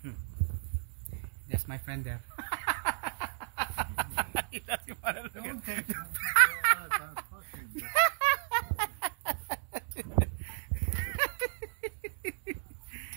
That's my friend there. He doesn't want to look at it.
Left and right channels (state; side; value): silent; left; digital silence